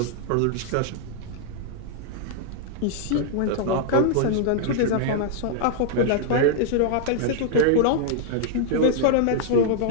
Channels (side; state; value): both; different; correlation -0.01